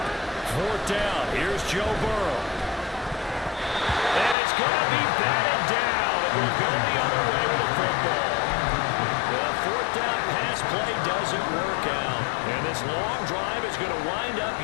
4th down. Here's Joe Burrow. And it's going to be batted down. It will go the other way with the football. The 4th down pass play doesn't work out. And this long drive is going to wind up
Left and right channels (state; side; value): drops out; right; at 4.4 s